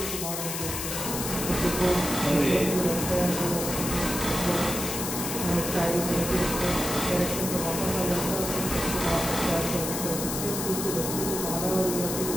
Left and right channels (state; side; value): noise; left; hiss, 4 dB below the sound